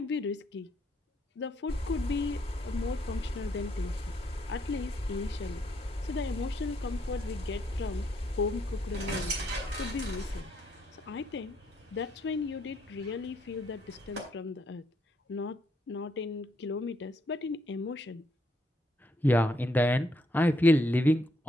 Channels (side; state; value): both; normal; correlation 0.74